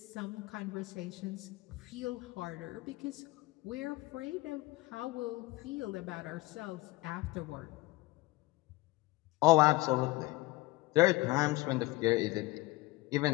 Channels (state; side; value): quieter; right; 20.7 dB